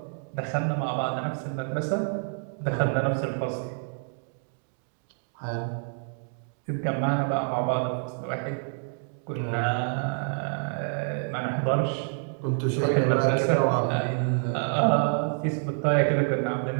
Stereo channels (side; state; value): left; silent; 56 dB below the other